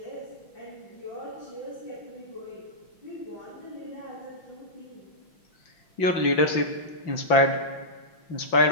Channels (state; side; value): late; right; 5.9 ms